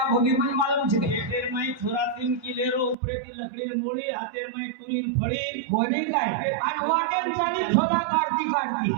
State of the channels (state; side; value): drops out; left; at 3.0 s